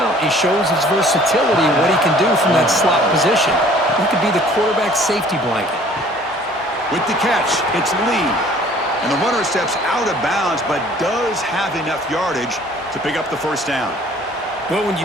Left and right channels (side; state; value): both; normal; correlation 0.54